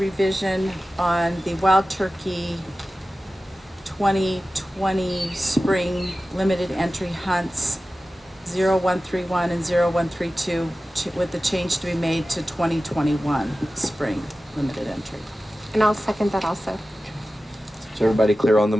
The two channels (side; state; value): both; normal; correlation 0.95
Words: on the wild turkey 2020 spring limited entry hunts 0131 and 0132 with the change to be made to 2021 spring limited entry. And I'll second that also. Is everybody clear on the